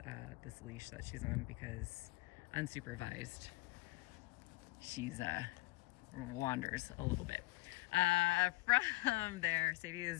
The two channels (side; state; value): right; quieter; 20.7 dB